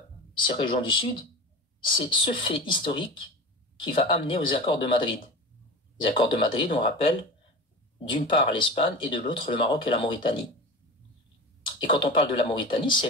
ces régions du Sud, c'est ce fait historique qui va amener aux accords de Madrid. Les accords de Madrid, on rappelle, d'une part l'Espagne et de l'autre le Maroc et la Mauritanie. Et quand on parle de la Mauritanie, c'est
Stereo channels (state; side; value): normal; both; correlation 0.31